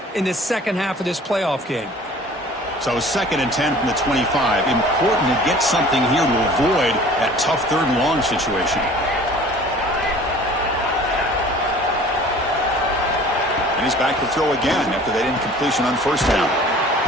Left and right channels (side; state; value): both; normal; correlation 0.47